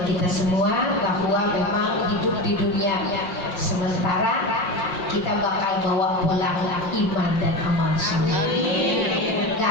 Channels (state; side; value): late; right; 5.6 ms